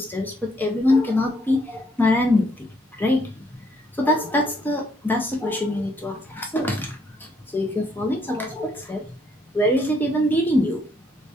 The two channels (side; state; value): both; normal; correlation 0.70